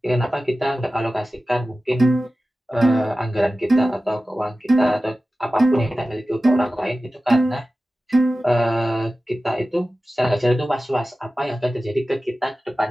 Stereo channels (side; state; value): both; normal; correlation 0.95